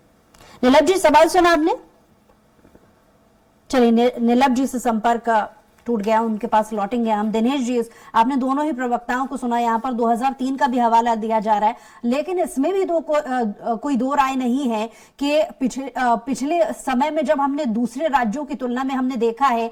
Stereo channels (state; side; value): identical; both; correlation 1.00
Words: नीलम जी सवाल सुना आपने? चलिए, नीलम जी से संपर्क टूट गया, उनके पास लौटेंगे हम। दिनेश जी, आपने दोनों ही प्रवक्ताओं को सुना। यहाँ पर 2003 का भी हवाला दिया जा रहा है, लेकिन इसमें भी कोई दो राय नहीं है कि पिछले समय में जब हमने दूसरे राज्यों की तुलना में हमने देखा है